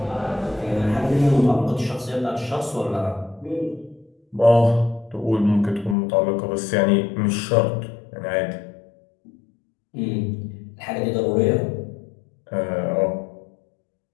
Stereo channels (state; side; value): drops out; right; at 6.0 s